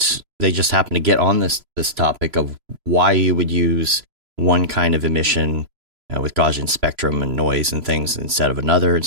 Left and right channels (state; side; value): late; left; 3.0 ms